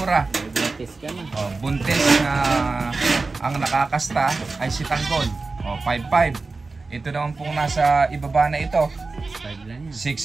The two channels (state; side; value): quieter; left; 3.8 dB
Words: May buntis ka na. O, buntis na ang nakakasta ay si Tanggol. O, 5.5. Ito naman pong nasa ibaba na ito, 6.5 lang yan.